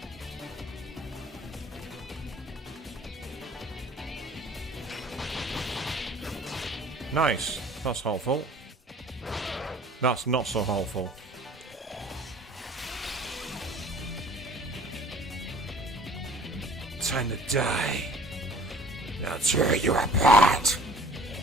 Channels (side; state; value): both; normal; correlation 0.50